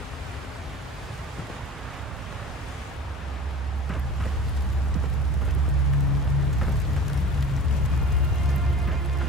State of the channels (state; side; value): normal; both; correlation 0.39